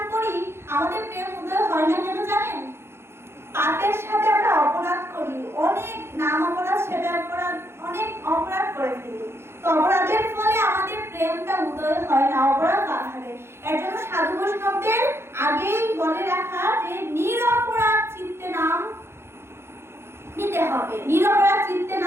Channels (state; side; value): late; left; 0.12 ms